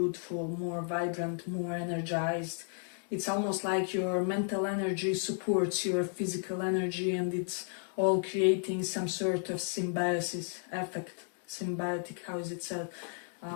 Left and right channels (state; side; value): silent; right; 56 dB below the other